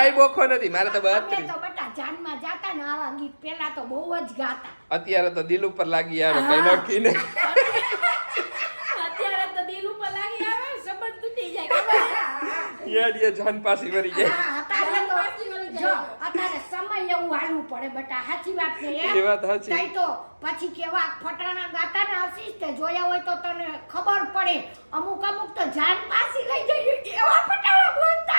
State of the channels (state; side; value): inverted; both; correlation -1.00